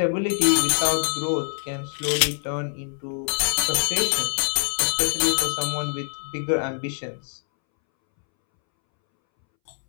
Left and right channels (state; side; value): silent; right; 62 dB below the other